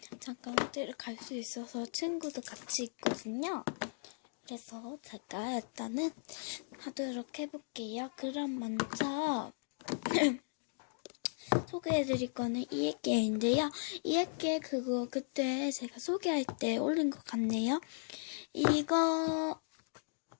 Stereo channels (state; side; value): silent; right; digital silence